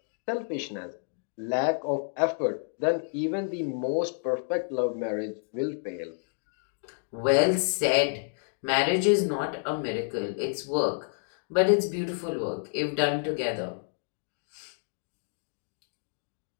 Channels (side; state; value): right; silent; 58 dB below the other